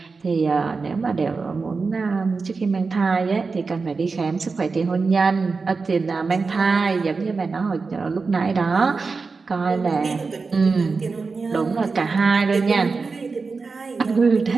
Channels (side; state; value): left; quieter; 4.4 dB